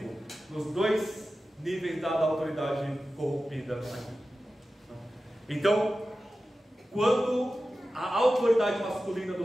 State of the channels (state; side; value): normal; both; correlation 0.94